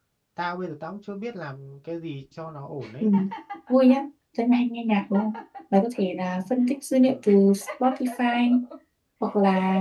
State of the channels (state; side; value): identical; both; correlation 1.00